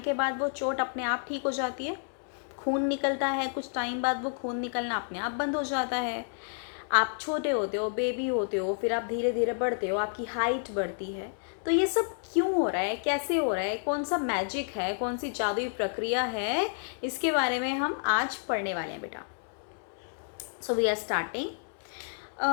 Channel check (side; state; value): right; silent; digital silence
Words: बाद वो चोट अपने आप ठीक हो जाती है? खून निकलता है, कुछ टाइम बाद वो खून निकलना अपने आप बंद हो जाता है। आप छोटे होते हो, बेबी होते हो, फिर आप धीरे धीरे बढ़ते हो, आपकी हाइट बढ़ती है। तो ये सब क्यों हो रहा है, कैसे हो रहा है, कौन सा मैजिक है, कौन सी जादुई प्रक्रिया है, इसके बारे में हम आज पढ़ने वाले हैं बेटा। So we are starting.